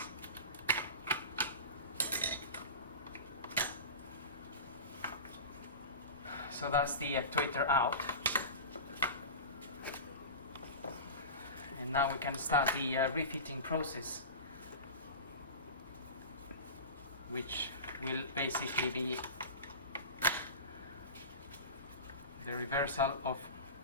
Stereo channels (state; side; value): inverted; both; correlation -0.30